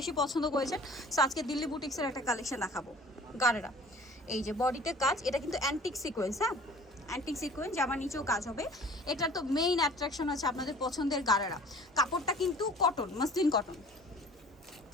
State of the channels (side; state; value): both; normal; correlation 0.48